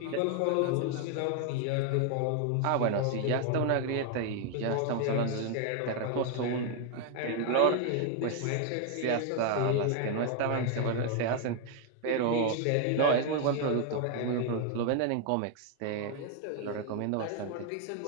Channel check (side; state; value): both; different; correlation 0.00